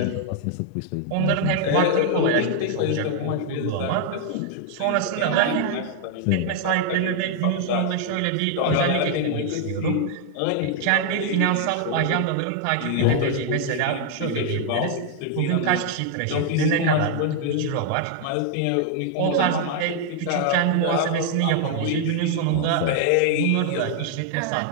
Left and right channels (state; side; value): different; both; correlation 0.00